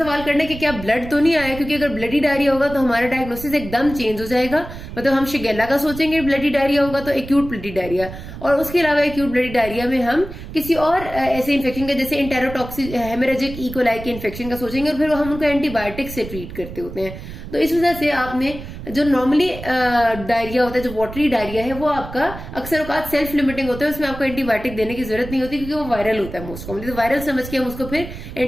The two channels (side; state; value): right; noise; rumble, 12 dB below the sound